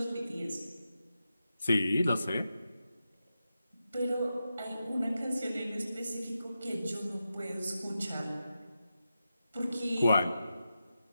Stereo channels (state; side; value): inverted; both; correlation -0.90